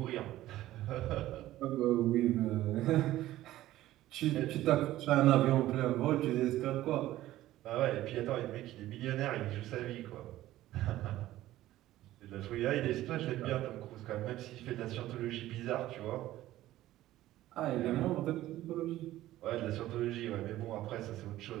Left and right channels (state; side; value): quieter; left; 15.0 dB